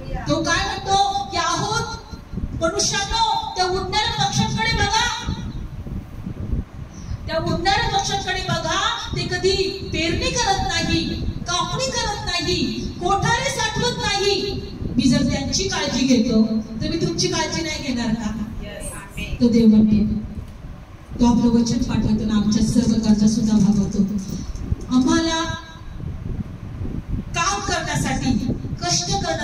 तो काय म्हणतो की आहोत मनुष्यानो, त्या उडणाऱ्या पक्ष्यांकडे बघा, त्या उडणाऱ्या पक्ष्यांकडे बघा. ते कधी पेरणी करत नाही, कापणी करत नाही, कोठारे साठवत नाही. मी जर त्यांची काळजी घेतो तर मी तुमची काळजी नाही घेणार का? तो देव म्हणतो. तो आपलं वचन पाठवतो ना आमच्या सर्व गरजा सुद्धा भागवतो. आम्हाला काम करण्यासाठी, कष्ट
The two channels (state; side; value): identical; both; correlation 1.00